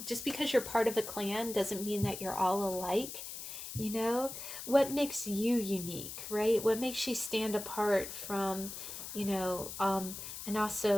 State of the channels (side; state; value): left; noise; hiss, 9 dB below the sound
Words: just because you're part of a clan doesn't mean that you're all alike. You know, what makes you unique, right? What makes you stand apart from, you know, and